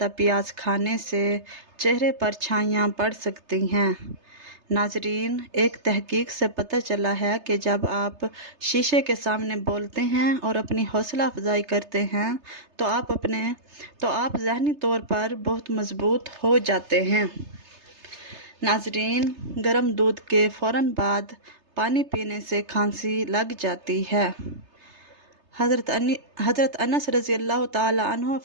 پیاز کھانے سے چہرے پر چھائیاں پڑ سکتی ہیں۔ ناظرین، ایک تحقیق سے پتہ چلا ہے کہ جب آپ شیشے کے سامنے بولتے ہیں اور اپنی حوصلہ افزائی کرتے ہیں تو آپ ذہنی طور پر بہت مضبوط ہو جاتے ہیں۔ ناظرین، گرم دودھ کے فوراً بعد پانی پینے سے کھانسی لگ جاتی ہے۔ حضرت انس رضی اللہ تعالی عنہ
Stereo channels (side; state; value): left; late; 3.3 ms